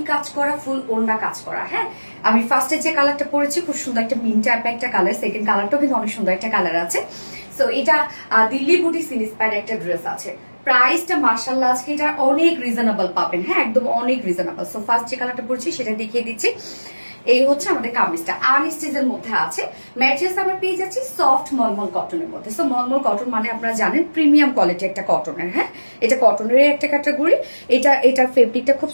কাজ করা, ফুল ওড়না কাজ করা। হ্যাঁ, আমি ফার্স্টে যে কালারটা পরেছি খুব সুন্দর একটা মিন টাইপের একটা কালার, সেকেন্ড কালারটাও কিন্তু অনেক সুন্দর একটা কালার আছে। সো এটা দিল্লি বুটিক ইন্সপায়ার্ড একটা ড্রেস আছে। প্রাইসটা মার্শাল্লাহ আজকে এটা অনেক রিজনেবল পাবেন। হ্যাঁ, একদম অনেক রিজনেবল। সো ফার্স্ট যে কালারটা পরেছি সেটা দেখিয়ে দিচ্ছি। এই হচ্ছে আমাদের কামিজটা আনস্টিচের মধ্যে আছে। ম্যাটেরিয়ালস আমরা পেয়ে যাচ্ছি সফট মলমল কটনের মধ্যে। সো মলমল কটন মানে আপনারা জানেন প্রিমিয়াম কোয়ালিটি একটা কটনের। হ্যাঁ, এটা কটনের একটা ক্যাটাগরি। এটার ফেব্রিকটা খুব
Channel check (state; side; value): inverted; both; correlation -1.00